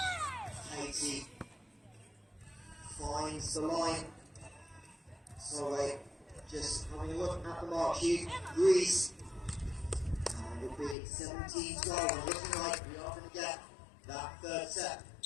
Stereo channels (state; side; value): drops out; right; at 11.0 s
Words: Katie finds the line. Sorry, just having a look at the mark sheet. Greece. And it'll be 17-12. And looking like we are going to get that third set